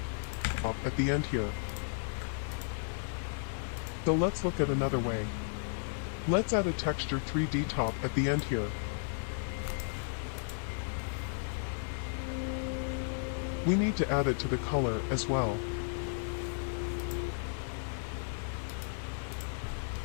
at the end here. So let's look at another way. Let's add a texture 3D top at the end here. We need to add it to the color as well.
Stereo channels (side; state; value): right; silent; digital silence